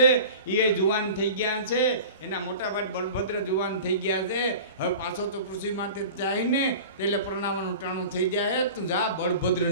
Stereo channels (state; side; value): inverted; both; correlation -0.38